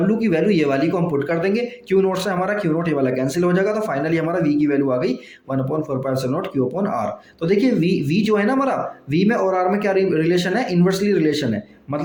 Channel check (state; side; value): identical; both; correlation 1.00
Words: की वैल्यू ये वाली को हम पुट कर देंगे, Q0 से हमारा Q0 ये वाला कैंसिल हो जाएगा, तो फाइनली हमारा V की वैल्यू आ गई 1/4πε0 Q/R। तो देखिए V जो है ना हमारा, V में और R में क्या रिलेशन है, इन्वर्सली रिलेशन है,